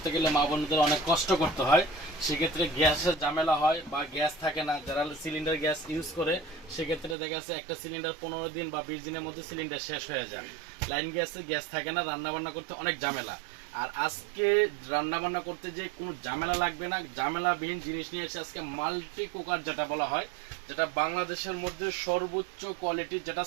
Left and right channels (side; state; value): left; drops out; at 7.2 s